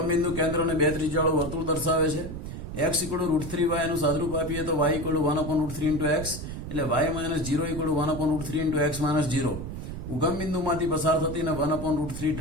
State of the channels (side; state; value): right; noise; rumble, 8 dB below the sound